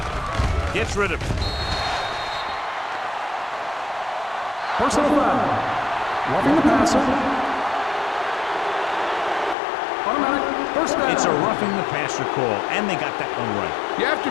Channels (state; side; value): drops out; right; at 9.6 s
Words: gets rid of it. Personal foul. Roughing the passer. Automatic first down. It's a roughing the passer call, and they got that one right. You have to